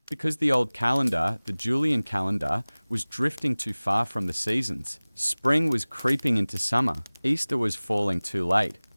Because the old calendar, the Julian calendar, was drifting too far from the seasons. Spring was creeping into summer. Easter was falling too late.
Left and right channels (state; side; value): inverted; both; correlation -1.00